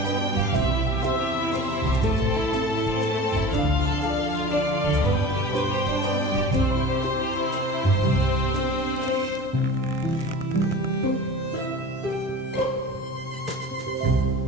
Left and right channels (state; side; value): normal; both; correlation 0.37